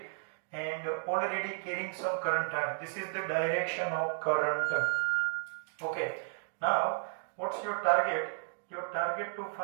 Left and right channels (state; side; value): silent; left; digital silence